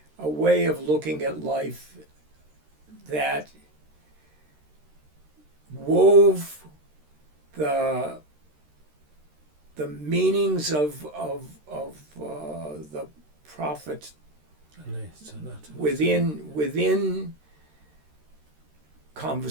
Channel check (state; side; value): late; left; 13 ms